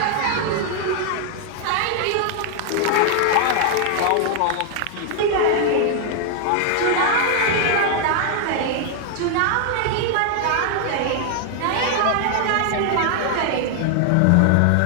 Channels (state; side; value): different; both; correlation 0.00